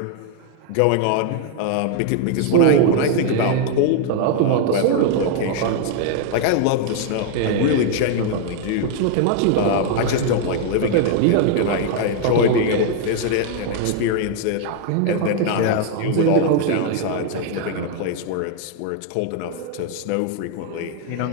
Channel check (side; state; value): both; different; correlation 0.00